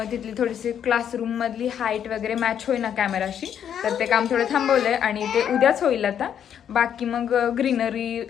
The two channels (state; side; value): quieter; right; 9.0 dB